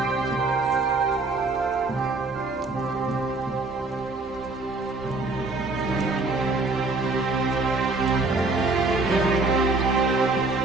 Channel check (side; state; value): left; quieter; 3.4 dB